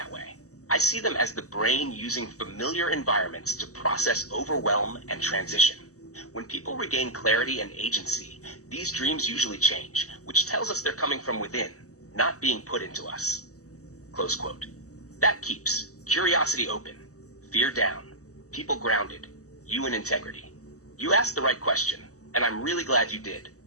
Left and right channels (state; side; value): late; right; 0.66 ms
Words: way. I see them as the brain using familiar environments to process overwhelm and transition. When people regain clarity and agency, these dreams usually change, which tells us they're coming from within, not being put into us. Close quote. That keeps curiosity open, fear down, people grounded, you in integrity. You asked the right question, and I'm really glad you did.